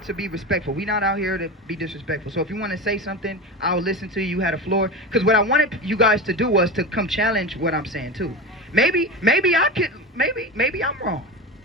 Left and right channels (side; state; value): both; normal; correlation 0.25